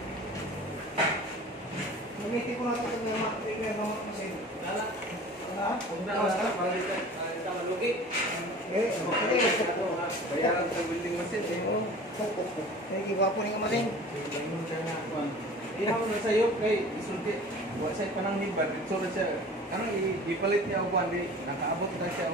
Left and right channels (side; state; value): both; normal; correlation 0.42